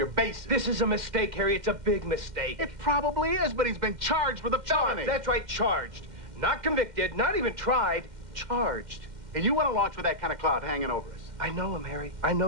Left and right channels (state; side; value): late; left; 2.1 ms